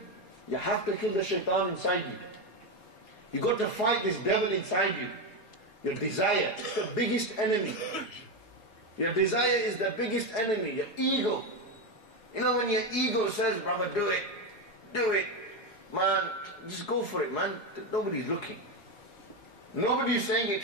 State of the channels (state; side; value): late; right; 4.7 ms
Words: You have to kill the shaitan inside you. You got to fight this devil inside you. Your desire, it's the biggest enemy. Your desire is the biggest enemy, your ego. You know when your ego says, brother, do it, man, just go for it, man. Nobody's looking. Nobody's saying it